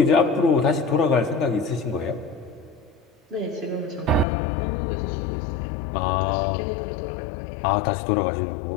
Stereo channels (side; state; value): right; drops out; at 4.2 s